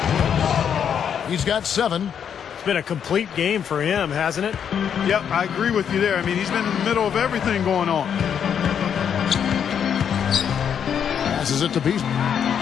He's got 7. It's been a complete game for him, hasn't it? Yep, I agree with you there. I mean, he's been in the middle of everything going on. Passes it to Beasley.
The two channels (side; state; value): right; quieter; 8.1 dB